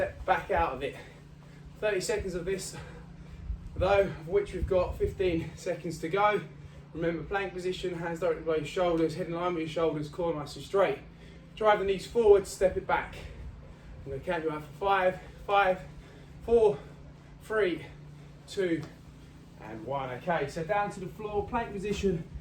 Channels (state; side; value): identical; both; correlation 1.00